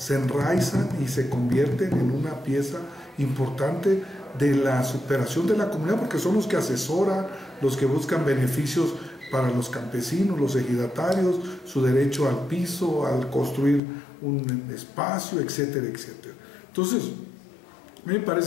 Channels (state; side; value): drops out; right; at 13.8 s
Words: enraizan y se convierten en una pieza importante de la superación de la comunidad, porque son los que asesoran, los que buscan beneficios para los campesinos, los ejidatarios, su derecho al piso, al construir un espacio, etcétera, etcétera. Entonces, a mí me